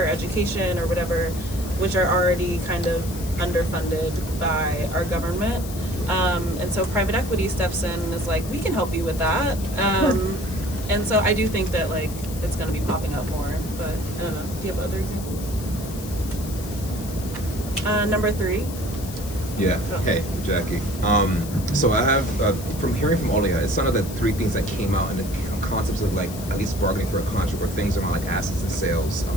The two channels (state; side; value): noise; left; hiss, 13 dB below the sound